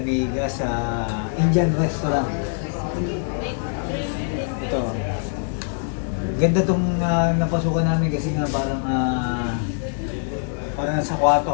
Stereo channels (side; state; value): right; silent; digital silence